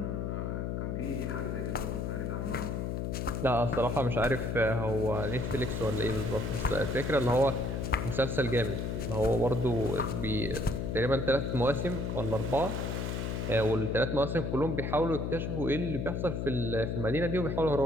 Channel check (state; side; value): noise; left; hum, 2 dB below the sound